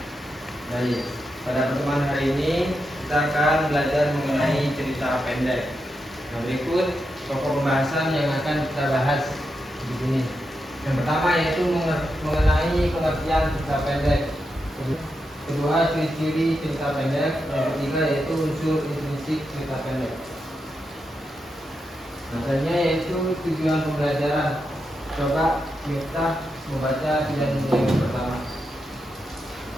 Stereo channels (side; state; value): both; normal; correlation 0.86